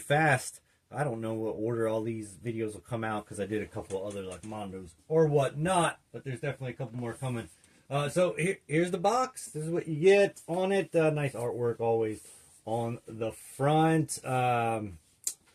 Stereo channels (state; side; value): identical; both; correlation 1.00